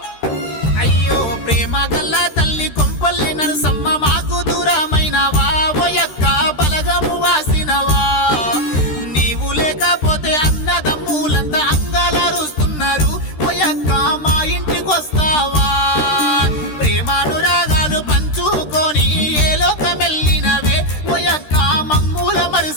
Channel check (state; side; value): late; right; 13 ms